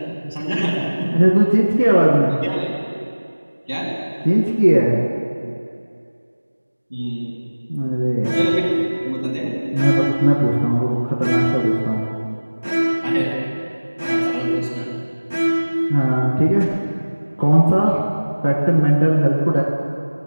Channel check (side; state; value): both; inverted; correlation -1.00